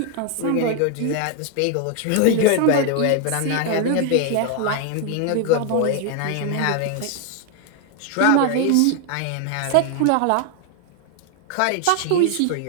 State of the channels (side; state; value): both; different; correlation 0.00